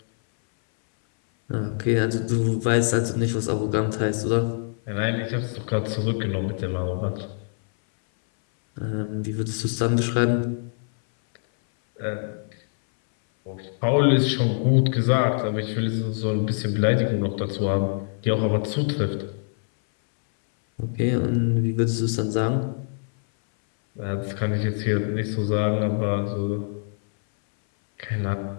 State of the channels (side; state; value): right; silent; 60 dB below the other